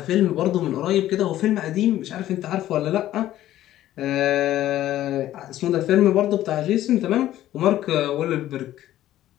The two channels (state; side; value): quieter; right; 13.5 dB